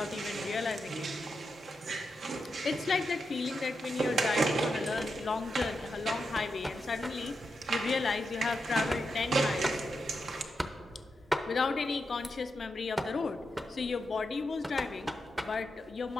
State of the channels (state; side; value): normal; both; correlation 0.87